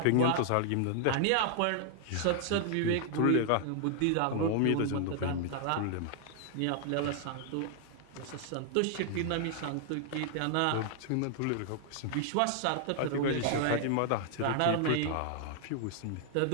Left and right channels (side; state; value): both; different; correlation 0.00